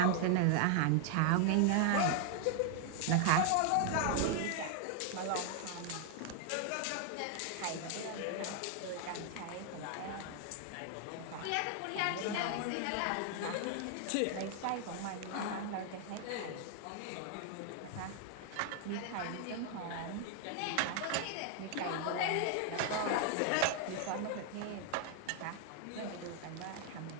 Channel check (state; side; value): different; both; correlation 0.00